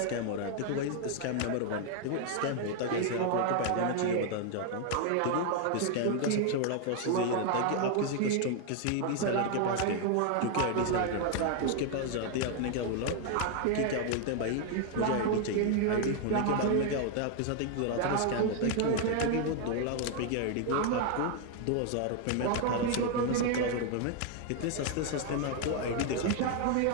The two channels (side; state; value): both; different; correlation 0.00